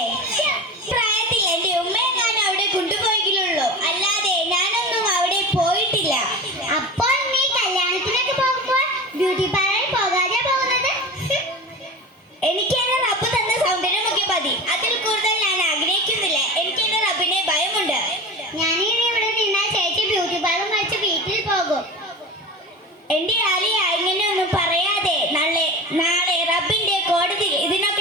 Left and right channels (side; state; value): both; normal; correlation 0.31